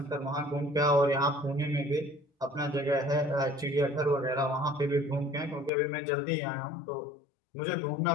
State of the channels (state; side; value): drops out; right; at 5.7 s